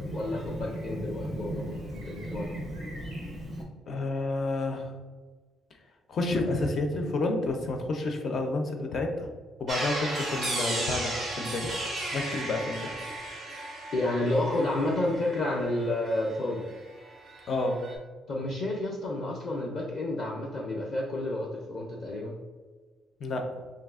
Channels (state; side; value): normal; both; correlation 0.75